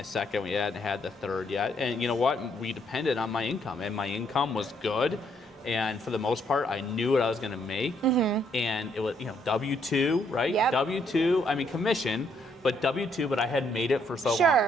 second. We hadn't had the third yet. And you know what? We depended on my income. And my income was good. And for the most part, I knew what I was going to make. And it was, W-2, right? Yep. W-2, I mean, commission. But W-2, but I had made it for so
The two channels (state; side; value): normal; both; correlation 0.71